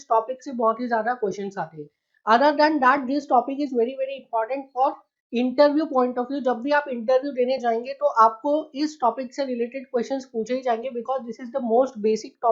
topic से बहुत ही ज़्यादा questions आते हैं. Other than that this topic is very important for interview point of view. जब भी आप interview देने जाएंगे तो आपको इस टॉपिक से रिलेटेड क्वेश्चंस पूछे ही जाएंगे because this is the most basic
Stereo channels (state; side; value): identical; both; correlation 1.00